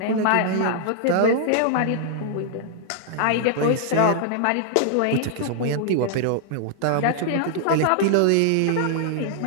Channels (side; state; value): both; different; correlation -0.01